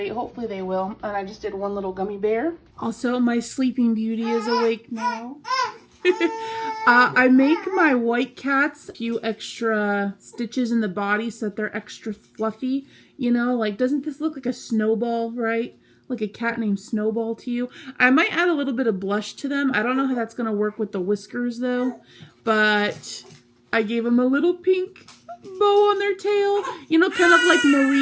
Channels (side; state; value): both; identical; correlation 1.00